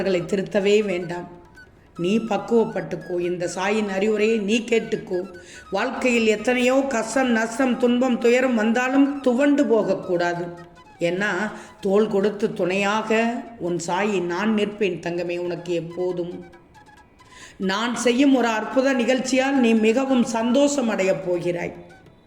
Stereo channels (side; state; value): both; identical; correlation 1.00